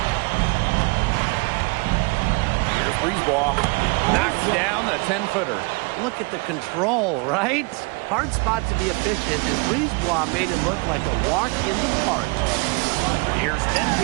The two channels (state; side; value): quieter; left; 29.7 dB